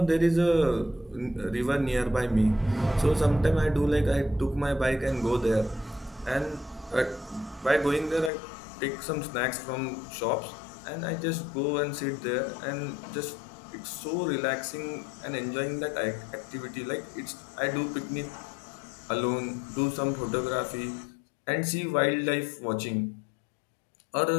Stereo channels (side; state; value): right; drops out; at 8.3 s